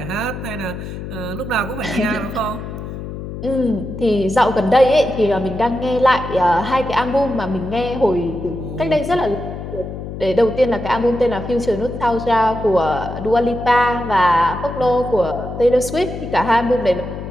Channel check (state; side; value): noise; left; hum, 9 dB below the sound